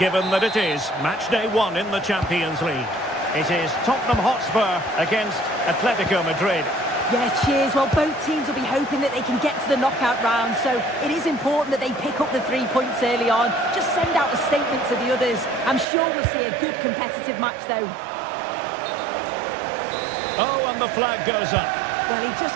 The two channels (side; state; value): left; drops out; at 15.9 s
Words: that it is match day 1 in the Champions League. It is Tottenham Hotspur against Atletico Madrid. Yeah, cheers. Well, both teams will be hoping that they can get to the knockout round, so it is important that they pick up the 3 points early on. Just send out a statement to the others. I'm sure we'll see a good competitive match, though. Oh, and the flag goes up. Well, he